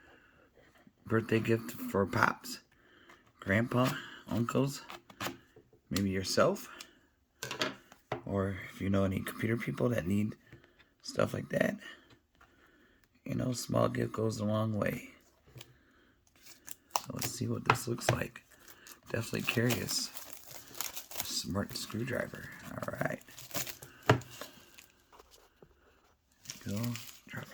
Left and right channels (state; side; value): identical; both; correlation 1.00